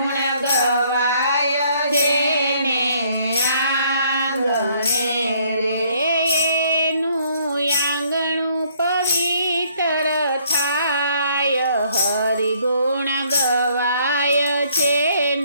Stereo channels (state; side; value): inverted; both; correlation -0.64